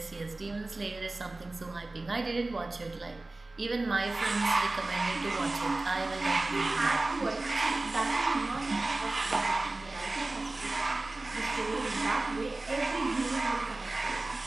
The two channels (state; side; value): quieter; left; 3.0 dB